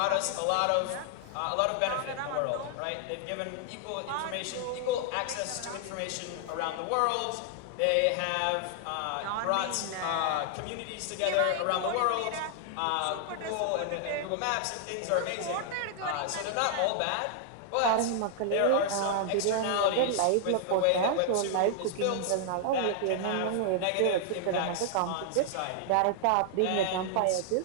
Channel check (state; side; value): different; both; correlation 0.00